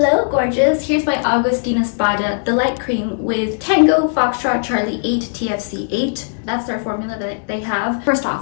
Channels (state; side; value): silent; right; digital silence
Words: gorgeous, here's my Augustinus Bada, the light cream with Tango Foxtrot Charlie 8 TFC 8. That's their formula that they have. First